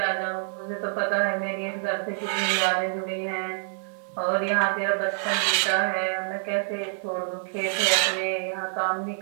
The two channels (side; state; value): left; silent; digital silence